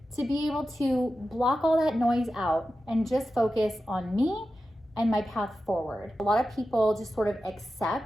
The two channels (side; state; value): both; normal; correlation 0.92